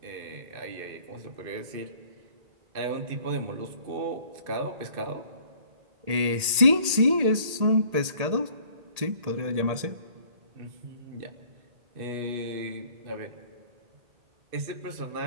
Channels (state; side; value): late; left; 1.8 ms